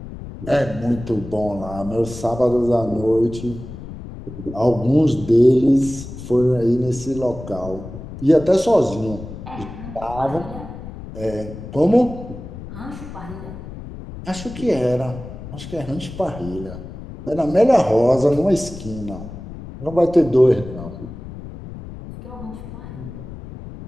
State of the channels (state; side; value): noise; left; rumble, 12 dB below the sound